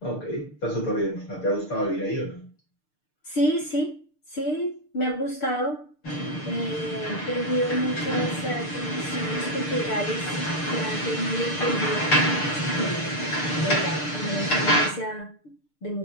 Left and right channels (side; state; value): right; late; 6.7 ms